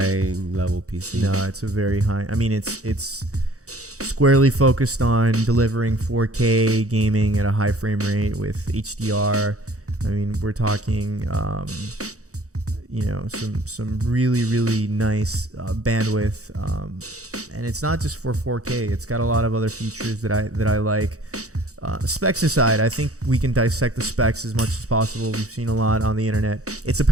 level PC. No, it's a very high. I mean, it's squarely focused on delivering 4K gaming at a high frame rate with HDR. I mean, we're talking, some really, really nice bandwidth, and it's not just for 4K. It's got a lot of other features that I like. Specs aside, I think we can dissect the specs as much as possible. We've seen a lot on the internet. It's a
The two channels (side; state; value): left; late; 0.65 ms